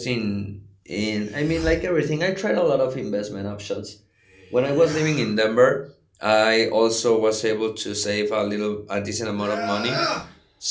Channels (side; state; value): both; identical; correlation 1.00